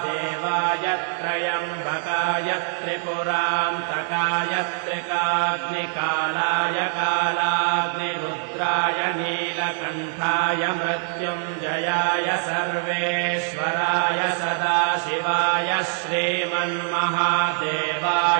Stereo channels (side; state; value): left; silent; 63 dB below the other